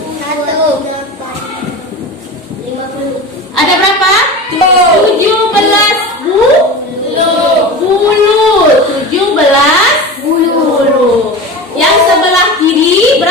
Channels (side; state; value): both; normal; correlation 0.30